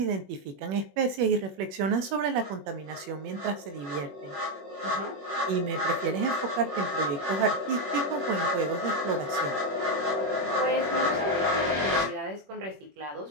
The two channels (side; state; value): left; late; 21 ms